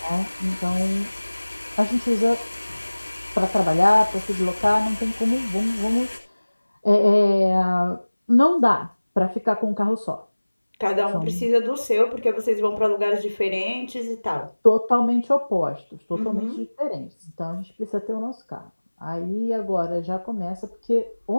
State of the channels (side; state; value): both; inverted; correlation -1.00